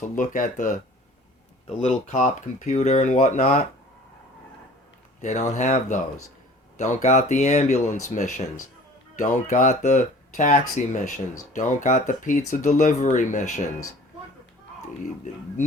look at the little cop computer and whatnot. They don't have those. Don't got the ambulance missions. Don't got the taxi missions. Don't got the pizza delivery missions.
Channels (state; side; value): normal; both; correlation 0.47